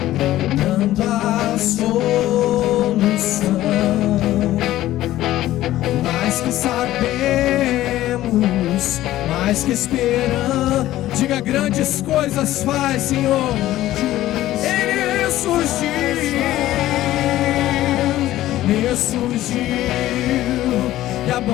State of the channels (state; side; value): quieter; right; 14.7 dB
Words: dando a solução. Mais que sabemos, mais que esperamos, diga: grandes coisas faz, Senhor. Ele ressurgiu e a